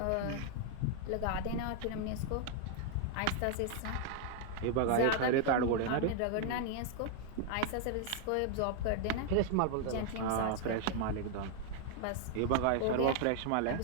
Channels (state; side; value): different; both; correlation 0.00